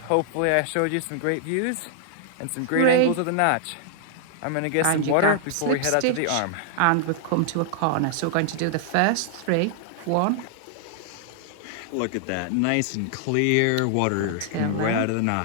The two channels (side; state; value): both; different; correlation -0.01